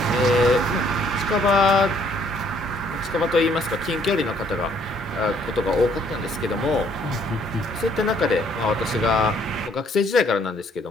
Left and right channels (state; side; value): normal; both; correlation 0.64